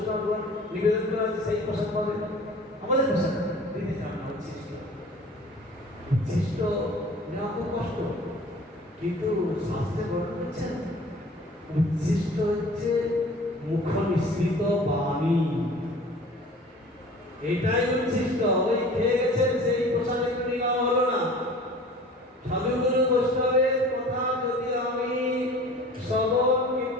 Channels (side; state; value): both; normal; correlation 0.45